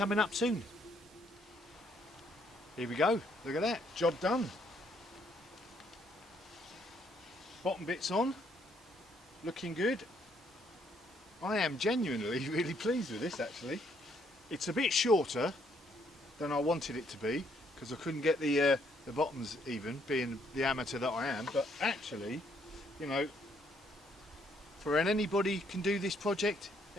up soon. Here we go, look at that, job done. Bottom bit's on, looking good. I am genuinely really pleased with this actually. It's a bit shorter than I wanted it to be, because I couldn't get the bottoms even, being the amateur that I am, but actually, you know, for anybody can do this project,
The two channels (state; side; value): normal; both; correlation 0.69